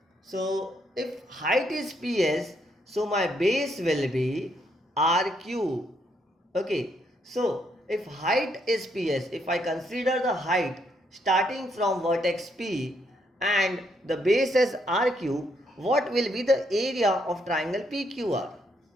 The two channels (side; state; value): both; normal; correlation 0.74